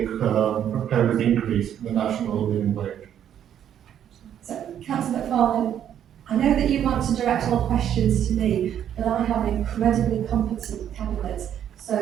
proposed increase in the national living wage? So, Councillor McFarlane, I know that you want to direct all questions to me, but I have an incredibly competent cabinet, so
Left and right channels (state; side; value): quieter; left; 9.9 dB